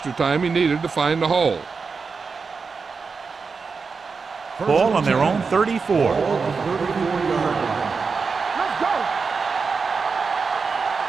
time he needed to find the hole. Ball on their own 34.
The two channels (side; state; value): left; quieter; 5.0 dB